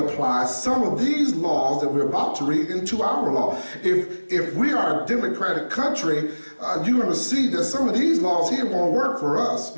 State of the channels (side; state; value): both; inverted; correlation -1.00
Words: some of these laws that we're about to read into our law. If we are a democratic country, you're going to see that some of these laws here won't work for us